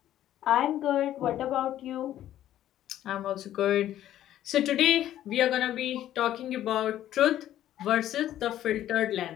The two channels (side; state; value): right; quieter; 12.3 dB